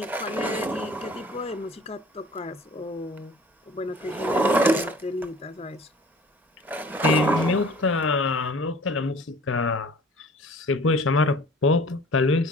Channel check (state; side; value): normal; both; correlation 0.48